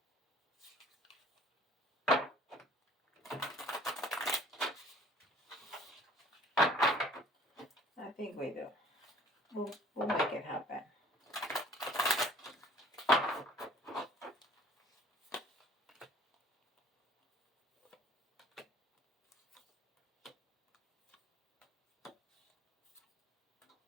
I think we do. We'll make it happen.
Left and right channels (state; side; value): normal; both; correlation 0.52